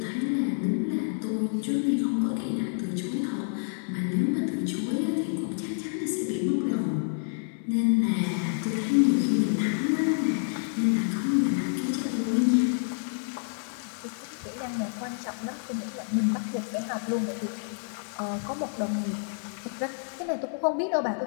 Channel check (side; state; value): right; silent; 57 dB below the other